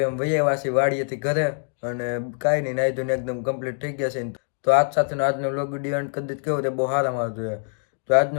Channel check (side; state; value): right; silent; 62 dB below the other